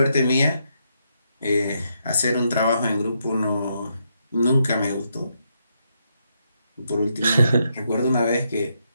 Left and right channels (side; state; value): both; inverted; correlation -0.79